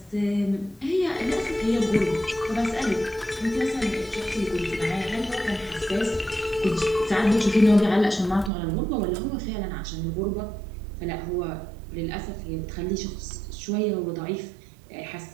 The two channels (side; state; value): left; drops out; at 8.5 s